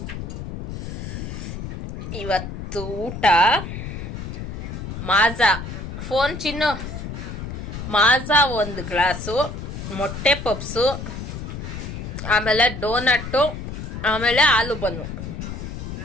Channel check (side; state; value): left; noise; rumble, 7 dB below the sound